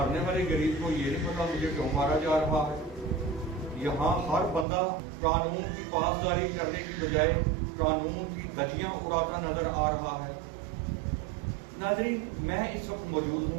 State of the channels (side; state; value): left; drops out; at 4.7 s